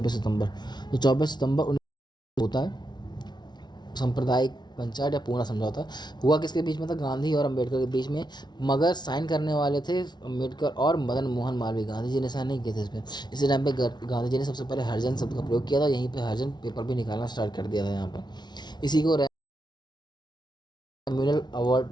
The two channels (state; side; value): late; right; 0.20 ms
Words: सितंबर। तो 24 सितंबर 19 होता है सांप्रदायिक पंचायत या पूना समझौता। हुआ किसके बीच में था? गांधी और अम्बेडकर के बीच में। मगर साइन करने वाले थे अम्बेडकर और मदन मोहन मालवीय, गांधी जी ने साइन नहीं किए थे इसमें। इसी टाइम पे गांधी जी ने सबसे पहले हरिजन शब्द का प्रयोग किया था, यहीं पे हरिजन पेपर भी निकालना स्टार्ट कर दिया था यहाँ पर। इसी को कम्युनल अवार्ड